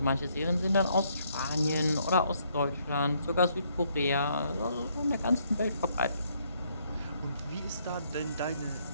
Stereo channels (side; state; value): both; inverted; correlation -0.70